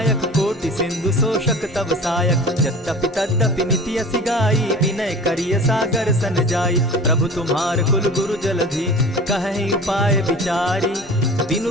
कोटि सिंधु शोषक तव सायक। यद्यपि तद्यपि निति असि गाई, विनय करिय सागर सन जाई। प्रभु तुम्हार कुल गुरु जलधि, कहि उपाय विचारी। बिनु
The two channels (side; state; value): both; normal; correlation 0.39